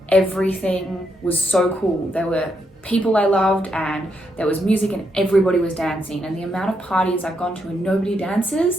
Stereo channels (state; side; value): normal; both; correlation 0.79